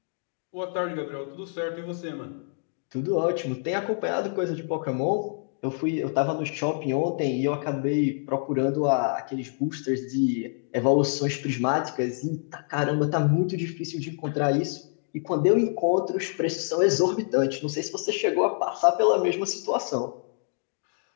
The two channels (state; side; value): silent; right; 60 dB below the other